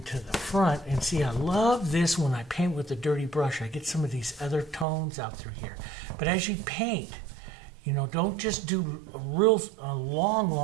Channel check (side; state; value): left; drops out; at 4.9 s